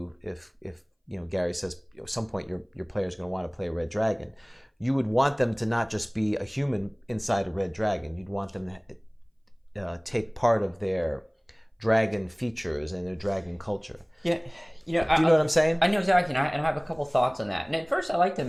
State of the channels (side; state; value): both; identical; correlation 1.00